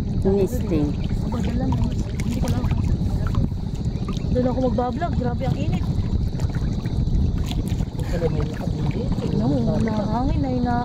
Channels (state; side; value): identical; both; correlation 1.00